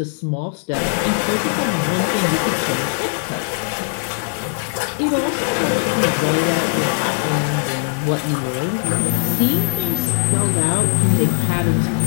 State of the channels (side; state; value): right; silent; digital silence